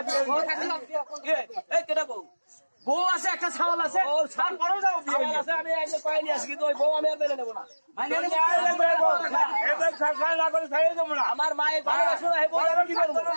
কেটা বউ বউ আছে একটা ছাওয়াল আছে আমি একদম পাইনি আসি কিন্তু ওই বউ আমি আর মেনে নেবো না আমার মায়ের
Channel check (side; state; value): both; inverted; correlation -1.00